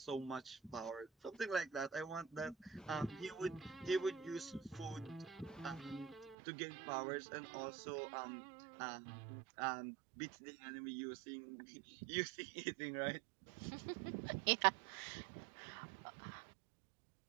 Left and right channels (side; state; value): left; drops out; at 6.4 s